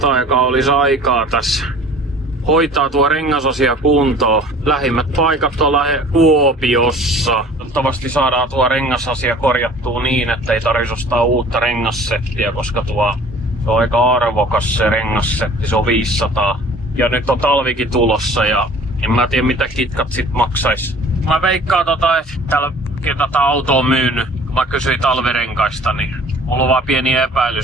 aikaa olisi aikaa tässä hoitaa tuo rengasasia kuntoon. Lähimmät paikat on Kuopiossa. Toivottavasti saadaan tuo rengasasia korjattua niin, että ei tarvitsisi ostaa uutta rengassettiä, koska tuo on aika arvokas se rengassetti, se on 500. Ja nyt on talvikin tulossa ja en mä tiedä mitä kitkat sit maksais. Mä veikkaan että täällä tätä autoa on myynyt, kun mä kysyin talvirenkaista, niin mulla on vaan pieni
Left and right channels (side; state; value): both; normal; correlation 0.48